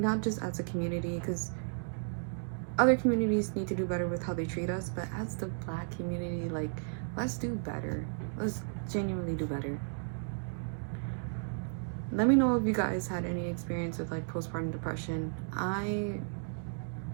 not just as a community, because other communities need to do better with how they treat us, but as the Black community, like, let's do better. Let's genuinely do better. Let me know if you guys had any experience with, like, postpartum depression. I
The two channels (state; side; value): silent; left; digital silence